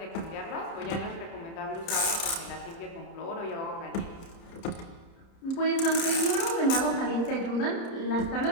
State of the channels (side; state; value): right; late; 30 ms